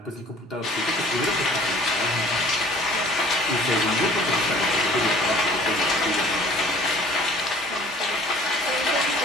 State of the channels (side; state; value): both; normal; correlation 0.51